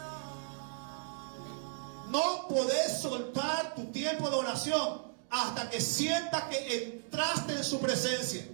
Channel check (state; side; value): silent; left; digital silence